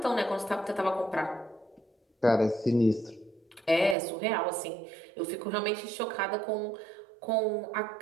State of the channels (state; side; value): drops out; left; at 4.0 s